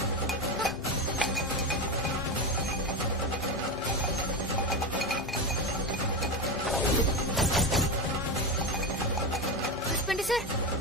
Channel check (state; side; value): normal; both; correlation 0.17